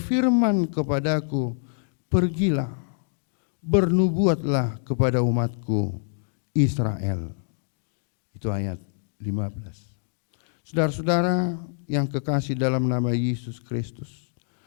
kepadaku, pergilah, bernubuatlah kepada umatku Israel. Itu ayat 15. Saudara-saudara yang kekasih dalam nama Yesus Kristus,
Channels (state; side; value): silent; right; digital silence